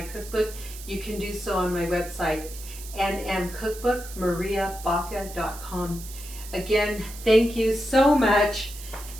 you can do so on my website, nmcookbookmariabaca.com. Again, thank you so much.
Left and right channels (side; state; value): right; noise; hiss, 14 dB below the sound